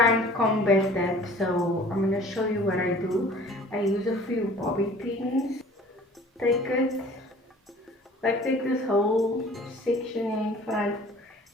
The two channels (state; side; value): normal; both; correlation 0.48